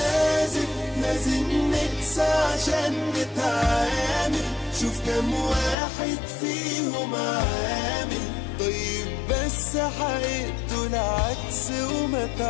لازم نقسى عشان نتعامل. شوف كم واحد فيهم عامل طيب بس حقيقته العكس، وما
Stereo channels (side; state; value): right; drops out; at 5.8 s